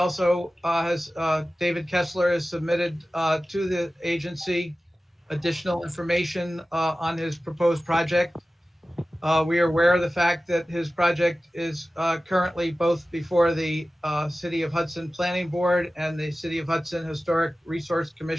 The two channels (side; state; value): both; normal; correlation 0.96